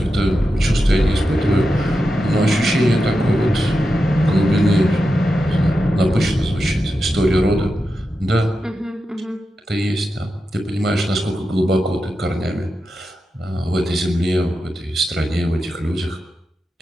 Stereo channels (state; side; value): normal; both; correlation 0.89